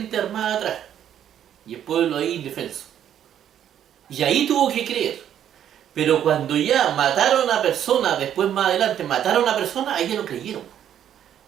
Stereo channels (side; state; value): left; quieter; 10.1 dB